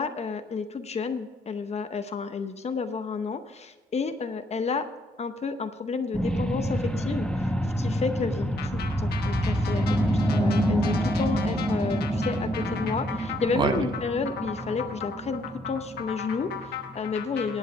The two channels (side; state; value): both; normal; correlation 0.70